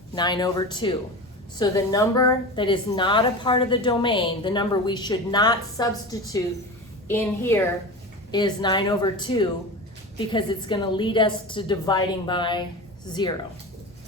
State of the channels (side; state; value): both; normal; correlation 0.29